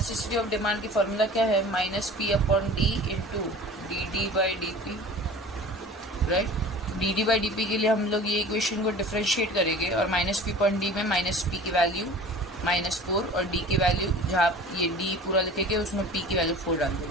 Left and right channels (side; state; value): both; normal; correlation 0.41